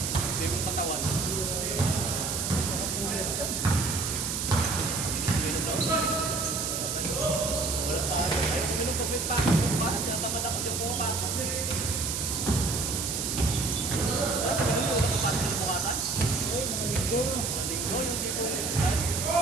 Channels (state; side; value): noise; right; hiss, 1 dB below the sound